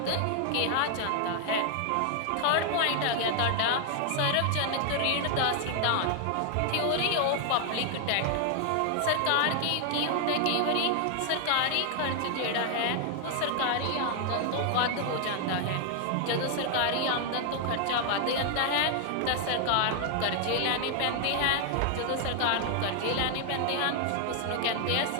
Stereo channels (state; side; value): different; both; correlation 0.00